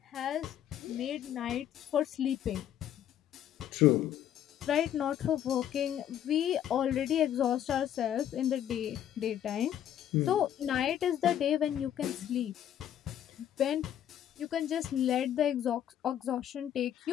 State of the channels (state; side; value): quieter; right; 10.6 dB